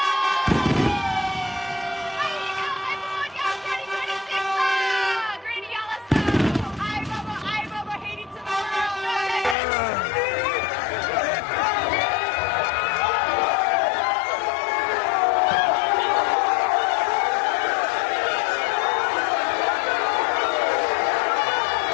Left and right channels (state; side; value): drops out; right; at 9.6 s